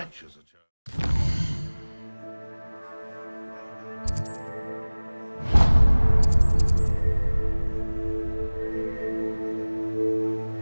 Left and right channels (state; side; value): inverted; both; correlation -1.00